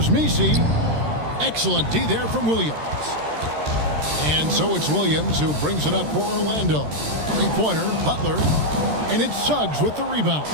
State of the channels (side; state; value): left; late; 13 ms